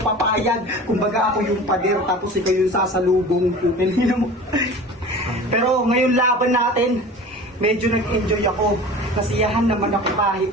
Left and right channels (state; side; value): normal; both; correlation 0.38